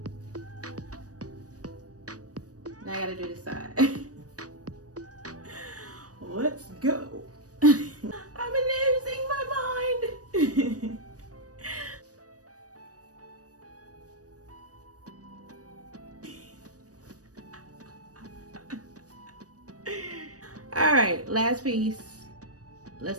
Now I gotta do this side. Let's go. I'm losing my mind. All right, last piece.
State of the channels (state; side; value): late; left; 0.67 ms